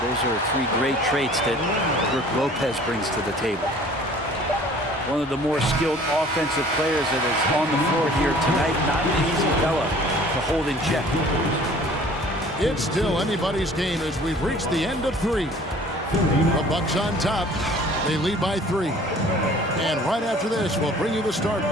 those are 3 great traits that Brook Lopez brings to the table. One of the more skilled offensive players that is on the floor here tonight. Not an easy fella to hold in check. It's still anybody's game as we've reached the end of 3. The Bucks on top. They lead by 3. And right after this, we'll bring you the start.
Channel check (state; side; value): normal; both; correlation 0.50